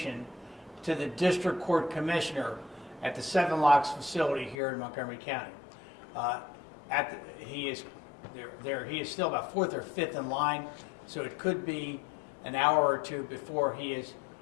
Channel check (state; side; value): drops out; right; at 4.5 s